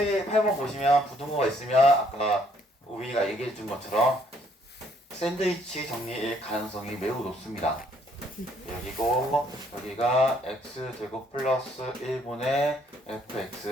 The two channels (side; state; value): both; normal; correlation 0.66